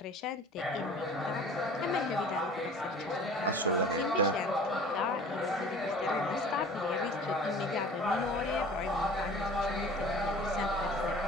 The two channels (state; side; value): normal; both; correlation 0.44